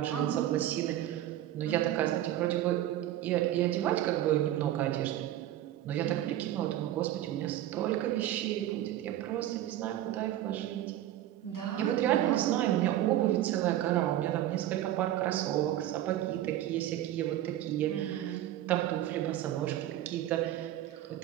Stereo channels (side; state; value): left; quieter; 13.0 dB